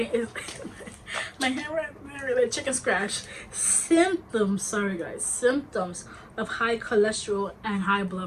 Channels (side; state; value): both; identical; correlation 1.00